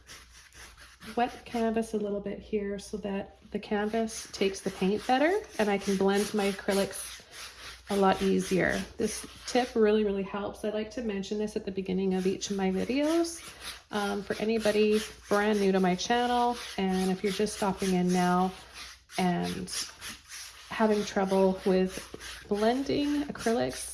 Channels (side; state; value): both; identical; correlation 1.00